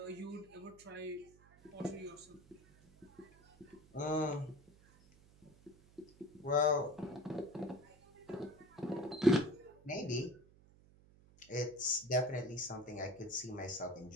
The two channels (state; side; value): noise; right; hum, 25 dB below the sound